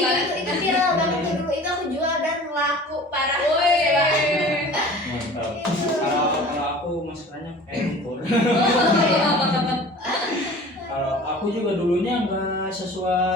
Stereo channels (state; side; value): normal; both; correlation 0.43